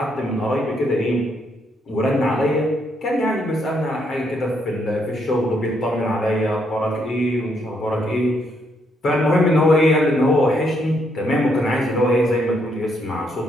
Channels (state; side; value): normal; both; correlation 0.74